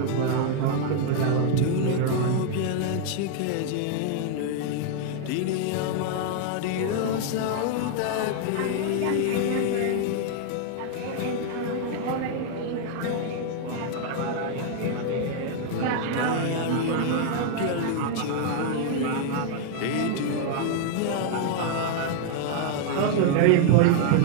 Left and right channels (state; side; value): different; both; correlation 0.00